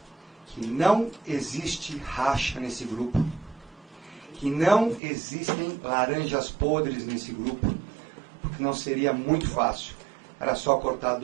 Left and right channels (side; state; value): left; drops out; at 5.0 s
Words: que não existe racha nesse grupo, que não existem laranjas podres nesse grupo, porque não seria muito fácil. Era só cortar